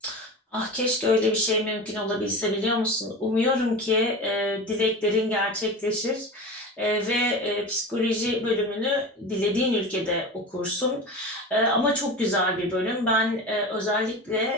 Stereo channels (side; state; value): both; normal; correlation 0.29